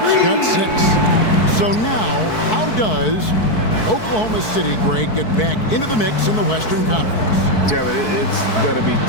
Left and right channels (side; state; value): right; late; 4.6 ms